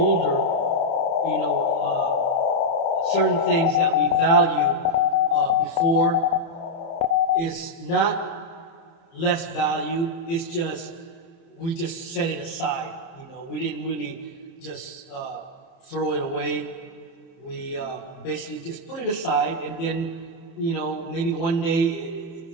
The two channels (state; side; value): late; right; 30 ms